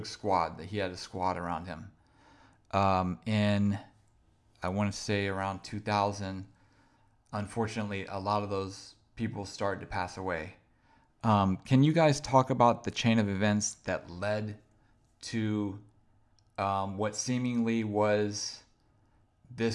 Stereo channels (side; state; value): both; identical; correlation 1.00